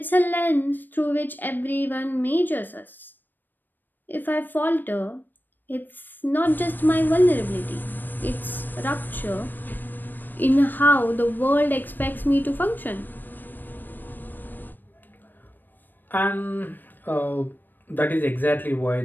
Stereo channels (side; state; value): right; late; 0.091 ms